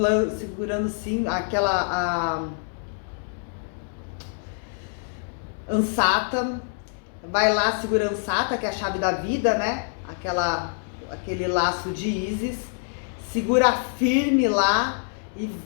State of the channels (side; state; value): right; silent; 61 dB below the other